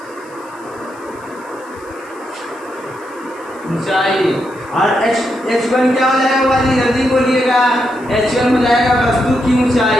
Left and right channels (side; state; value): left; noise; hiss, 27 dB below the sound